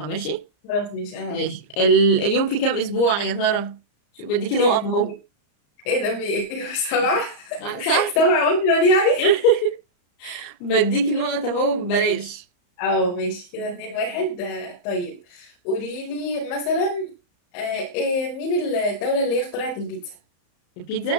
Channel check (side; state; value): right; late; 34 ms